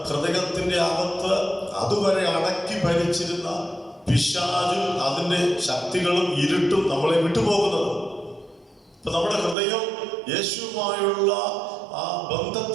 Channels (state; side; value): drops out; left; at 9.6 s